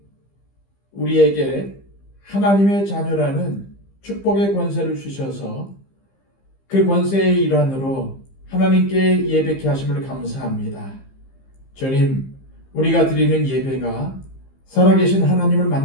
우리에게 하나님의 자녀라는 축복의 권세를 주셔서 그 권세의 일환으로 하나님께 예배케 하심을 감사합니다. 주님, 우리가 드리는 예배가 살아계신 하나님을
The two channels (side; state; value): right; late; 15 ms